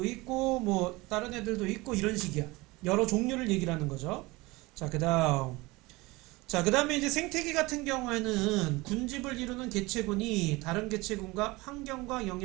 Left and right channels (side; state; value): left; quieter; 22.4 dB